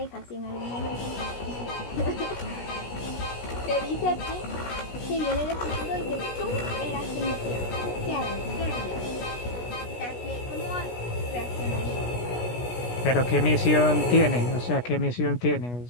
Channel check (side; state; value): right; late; 16 ms